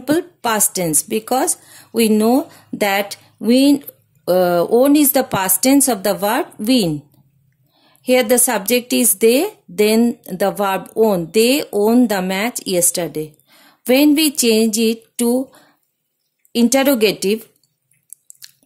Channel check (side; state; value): both; identical; correlation 1.00